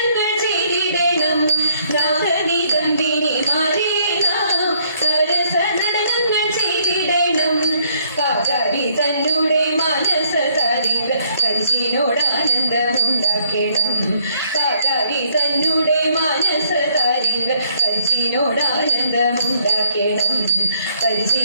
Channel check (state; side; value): inverted; both; correlation -0.68